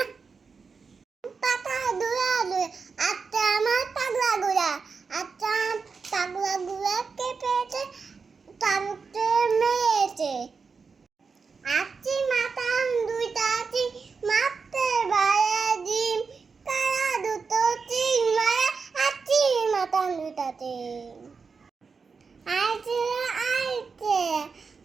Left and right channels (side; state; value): left; quieter; 5.1 dB